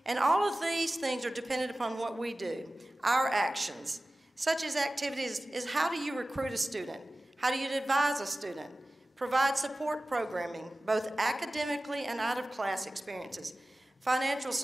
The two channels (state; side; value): normal; both; correlation 0.96